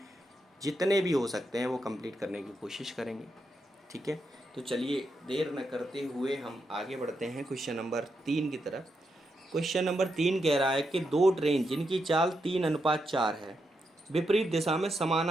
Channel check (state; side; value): normal; both; correlation 0.83